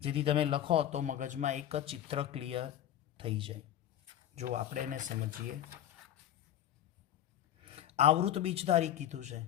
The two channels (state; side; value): quieter; right; 11.3 dB